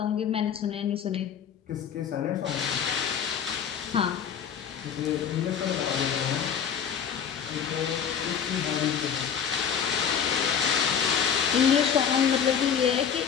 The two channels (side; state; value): right; quieter; 7.7 dB